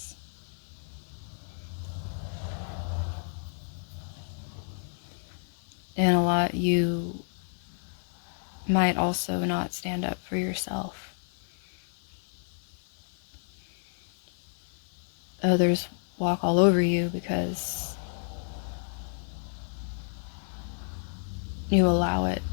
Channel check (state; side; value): silent; right; 57 dB below the other